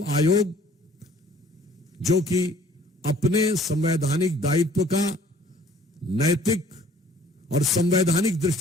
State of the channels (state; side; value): normal; both; correlation 0.55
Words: आयोग जो कि अपने संवैधानिक दायित्व का नैतिक और संवैधानिक